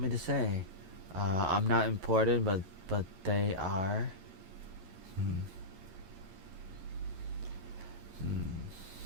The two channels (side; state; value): left; late; 11 ms